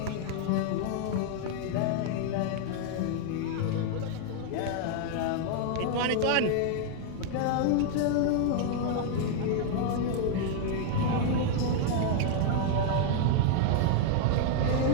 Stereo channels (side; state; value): both; different; correlation 0.00